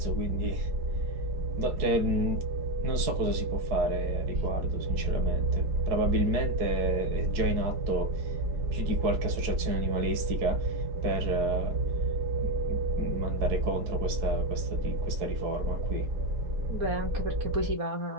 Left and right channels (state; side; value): late; left; 4.7 ms